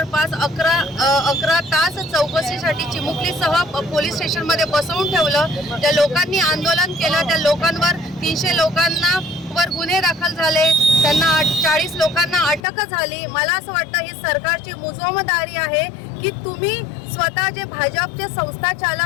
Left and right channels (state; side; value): drops out; right; at 12.6 s